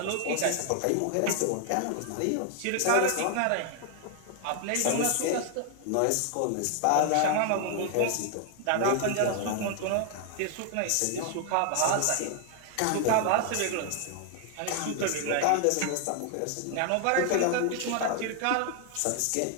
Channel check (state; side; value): different; both; correlation 0.00